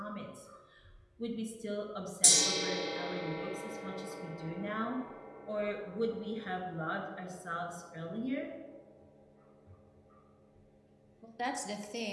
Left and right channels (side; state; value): both; identical; correlation 1.00